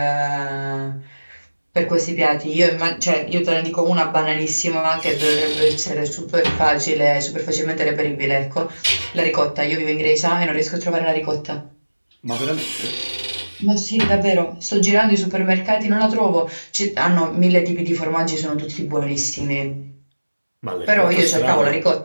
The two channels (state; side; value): inverted; both; correlation -1.00